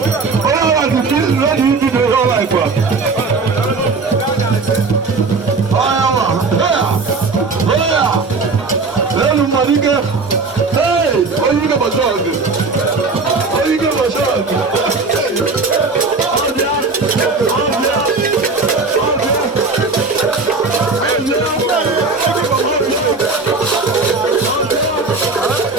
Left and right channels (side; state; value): left; quieter; 4.1 dB